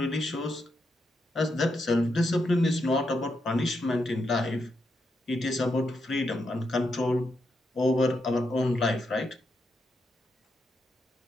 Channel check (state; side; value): normal; both; correlation 0.82